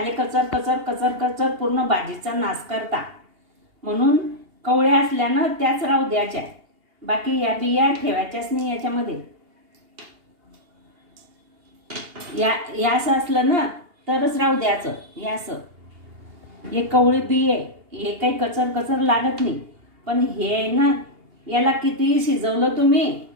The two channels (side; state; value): left; late; 2.8 ms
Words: कचर कचर कचर कचर पूर्ण भाजीचा नाश करता. म्हणून कवळ्या असल्यानं त्याच राहू द्यायच्या, बाकी या बिया ठेवायच्याच नाही याच्यामध्ये. या असं असलं ना तरच राहू द्यायचं. हे असं, हे कवळे बिये, हे काही कचर कचर लागत नाही. पण हे आहे ना, याला कितीही शिजवलं तुम्ही